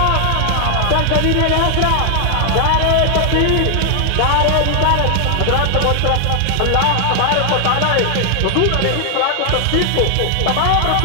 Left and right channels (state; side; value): different; both; correlation 0.00